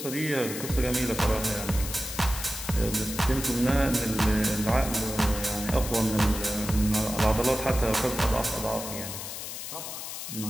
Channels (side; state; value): left; noise; hiss, 8 dB below the sound